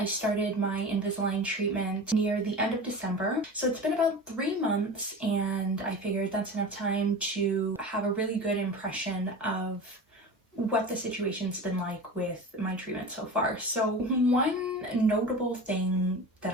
started my Invisalign treatment near the end of December, so it's been about 3 months, and I figured that's enough time to have a really good impression of what the situation's been like with my treatment so far. So one notable thing that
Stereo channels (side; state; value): both; normal; correlation 0.32